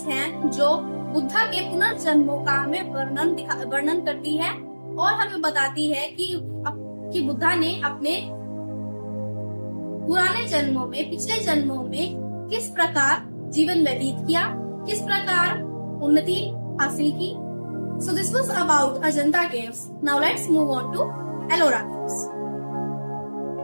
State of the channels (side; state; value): both; inverted; correlation -1.00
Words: हैं जो बुद्धा के पुनर्जन्मों का हमें वर्णन करती है और हमें बताती है कि बुद्धा ने अपने पुराने जन्मों में, पिछले जन्मों में किस प्रकार जीवन व्यतीत किया, किस प्रकार उन्नति हासिल की। So this was about Ajanta caves. Now let's move on to Ellora caves.